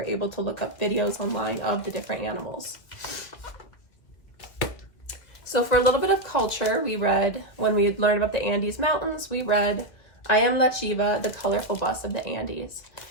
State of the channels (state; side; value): late; right; 2.0 ms